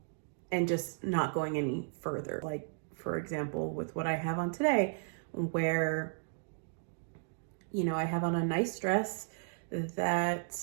just not going any further. Like, for example, with what I have on today, where, I have on a nice dress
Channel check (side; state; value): left; silent; digital silence